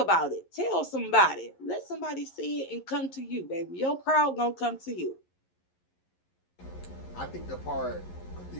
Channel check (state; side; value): late; right; 11 ms